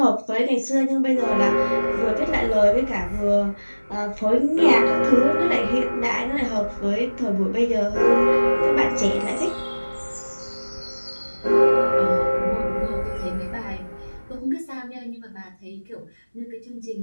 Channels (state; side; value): inverted; both; correlation -1.00